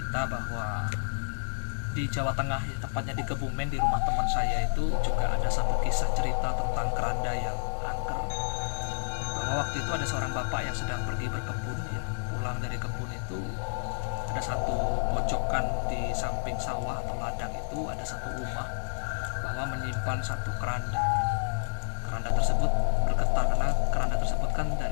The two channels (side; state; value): right; silent; digital silence